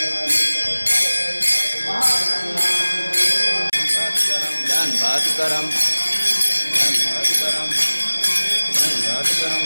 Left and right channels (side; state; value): both; inverted; correlation -1.00